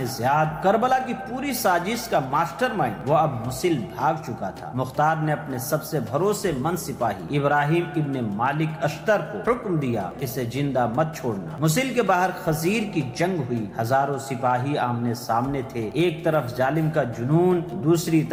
زیاد، کربلا کی پوری سازش کا ماسٹر مائنڈ۔ وہ اب موصل بھاگ چکا تھا۔ مختار نے اپنے سب سے بھروسے مند سپاہی ابراہیم ابن مالک اشتر کو حکم دیا، اسے زندہ مت چھوڑنا۔ موصل کے باہر خزیر کی جنگ ہوئی، ہزاروں سپاہی آمنے سامنے تھے، ایک طرف ظالم کا جنون، دوسری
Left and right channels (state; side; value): identical; both; correlation 1.00